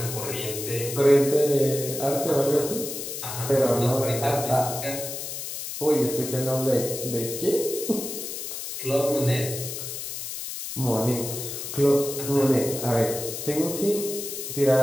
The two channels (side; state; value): left; noise; hiss, 7 dB below the sound